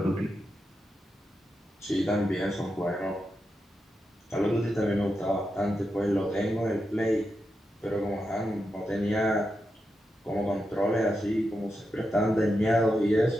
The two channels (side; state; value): both; normal; correlation 0.87